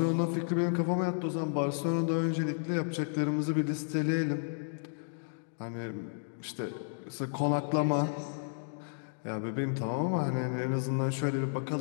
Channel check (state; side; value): silent; right; digital silence